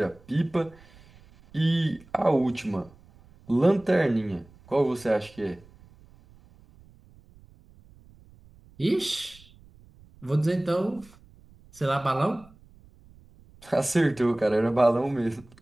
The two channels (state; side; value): noise; right; rumble, 26 dB below the sound